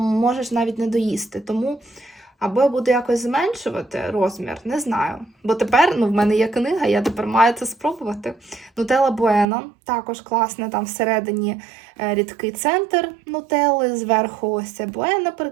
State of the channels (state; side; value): drops out; left; at 9.5 s